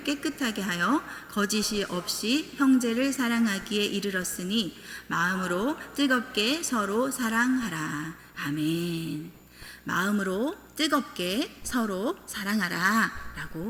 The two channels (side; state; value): both; identical; correlation 1.00